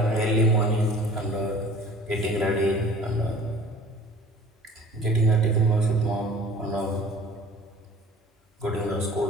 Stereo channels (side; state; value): both; normal; correlation 0.46